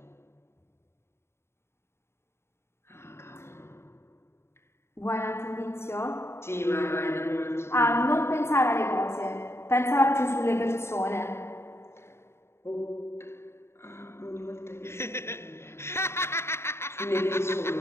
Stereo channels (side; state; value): right; late; 0.12 ms